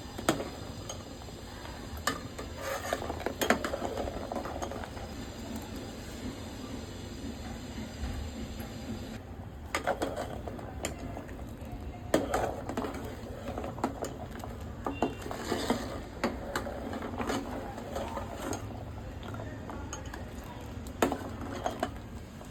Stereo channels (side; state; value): both; identical; correlation 1.00